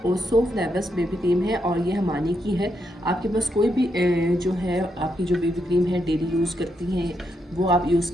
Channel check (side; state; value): both; normal; correlation 0.81